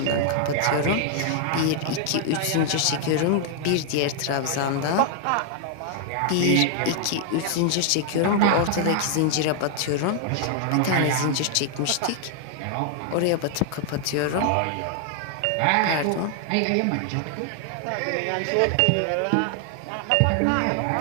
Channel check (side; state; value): both; different; correlation 0.00